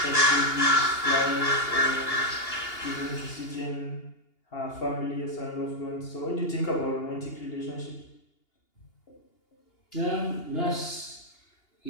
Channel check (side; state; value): right; late; 2.8 ms